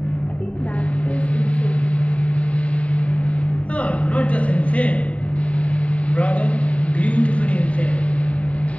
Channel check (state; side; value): late; right; 0.066 ms